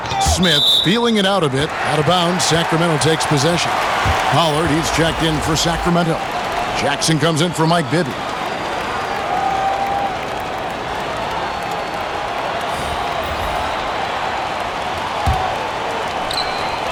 Smith feeling it out a bit. Out of bounds. Sacramento takes possession. Pollard, he's checked in for Sacramento. Jackson comes in for Mike Bibby.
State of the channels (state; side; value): identical; both; correlation 1.00